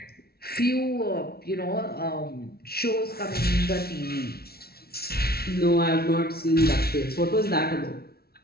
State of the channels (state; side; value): late; right; 0.45 ms